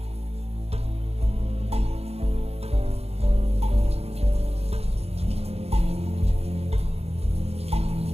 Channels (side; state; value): left; late; 0.30 ms